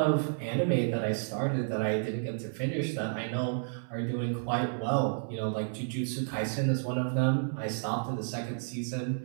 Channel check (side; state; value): left; silent; 57 dB below the other